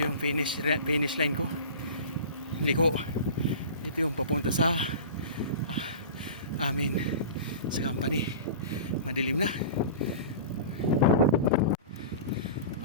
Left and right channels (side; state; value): both; inverted; correlation -0.35